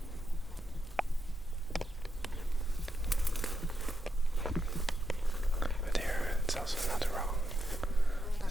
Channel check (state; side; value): normal; both; correlation 0.84